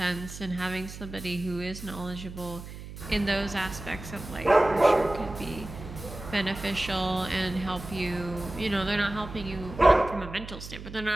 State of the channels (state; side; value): noise; right; hum, 12 dB below the sound